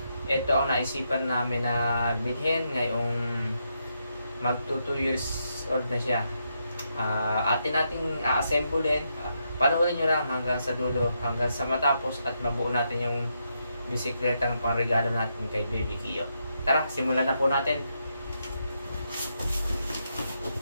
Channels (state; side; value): inverted; both; correlation -0.81